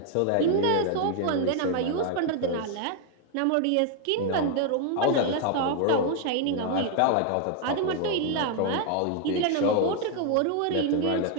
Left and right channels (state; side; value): different; both; correlation 0.00